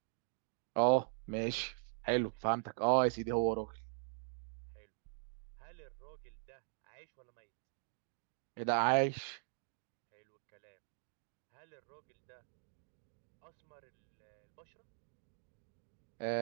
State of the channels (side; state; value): left; silent; digital silence